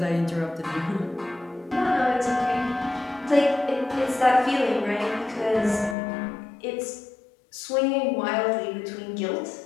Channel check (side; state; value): right; drops out; at 6.0 s